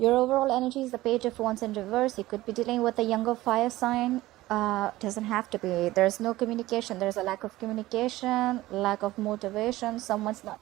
overall energy is the Page of Wands in reverse. You could be dealing with a younger fire sign. Doesn't have to be. There's no communication. There's a lack of communication, lack of motivation. Someone's not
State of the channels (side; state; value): left; quieter; 17.2 dB